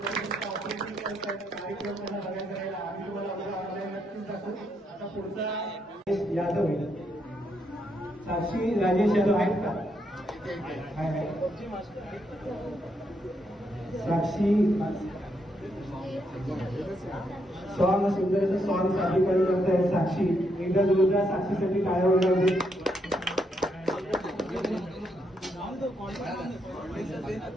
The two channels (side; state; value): both; normal; correlation 0.78